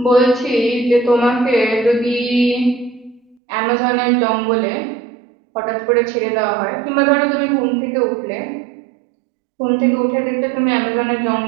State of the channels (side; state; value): left; drops out; at 3.4 s